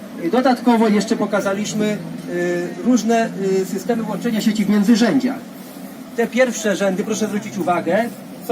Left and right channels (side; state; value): both; identical; correlation 1.00